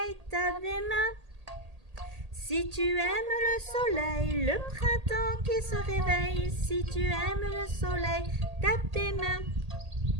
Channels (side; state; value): left; late; 1.8 ms